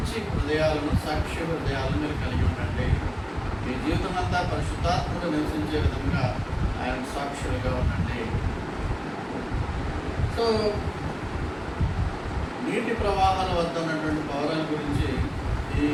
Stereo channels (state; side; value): identical; both; correlation 1.00